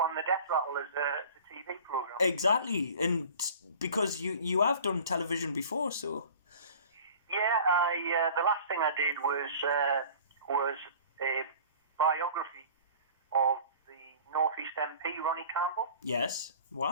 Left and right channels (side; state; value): both; inverted; correlation -0.44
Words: the Death Rattle as a TV program. Exactly, and because you have done television before, so. Yeah, the last thing I did was a biography of the North East MP Ronnie Campbell. Yes.